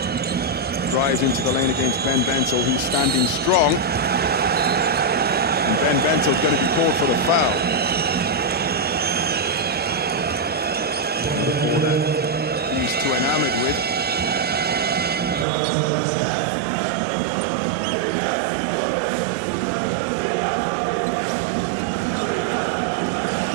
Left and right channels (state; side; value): drops out; left; at 15.5 s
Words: Drives into the lane against Ben Bentil, who's standing strong. And Ben Bentil's going to be called for the foul. Ball that he's too enamored with. So Zach LeDay bumping down on the block. Mr.